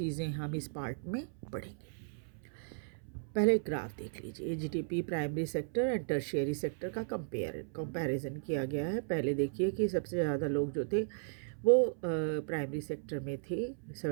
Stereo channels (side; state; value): left; silent; 54 dB below the other